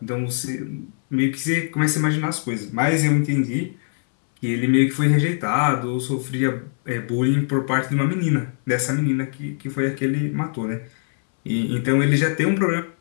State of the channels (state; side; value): silent; right; 64 dB below the other